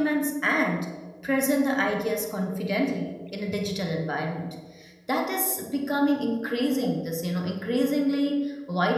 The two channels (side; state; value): both; identical; correlation 1.00